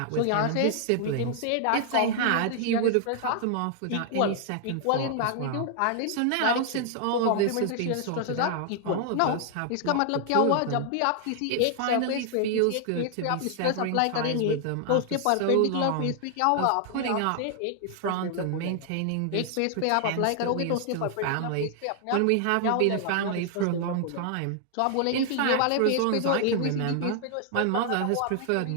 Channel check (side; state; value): both; different; correlation 0.00